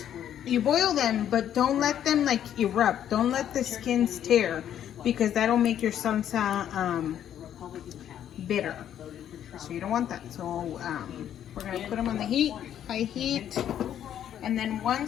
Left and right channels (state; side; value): quieter; right; 10.2 dB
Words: you boil them, but don't let them like erupt. Don't let the skins tear, because that'll make your salsa bitter. So you don't want that. So we're gonna put them on the heat, high heat, and then